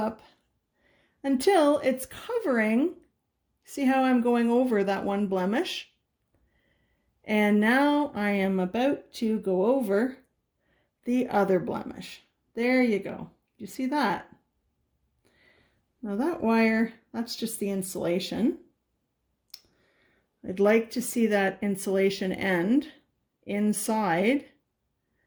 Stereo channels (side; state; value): both; identical; correlation 1.00